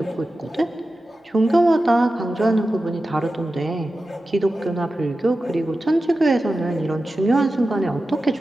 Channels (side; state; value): both; normal; correlation 0.93